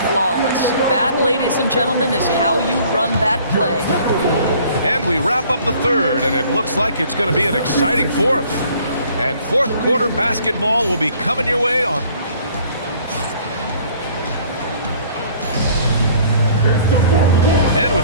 flawless. That, ladies and gentlemen, is how you run that play. And we wrap up the third, and it looks like it's going to be an exciting fourth. And fourth quarter basketball will be coming your way on. And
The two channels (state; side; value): inverted; both; correlation -0.56